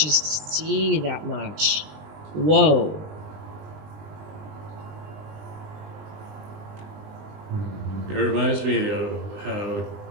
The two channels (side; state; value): left; late; 20 ms